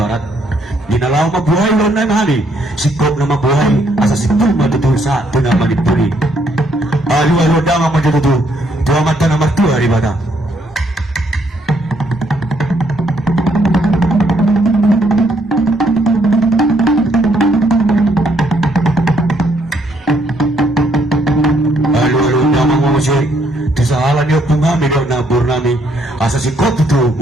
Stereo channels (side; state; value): both; normal; correlation 0.71